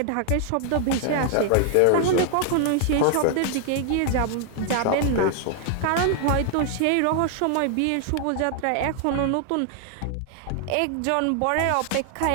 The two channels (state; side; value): different; both; correlation 0.00